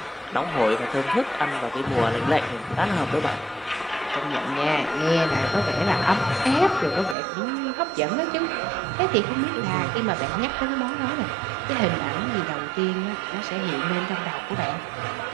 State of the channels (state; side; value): drops out; left; at 7.2 s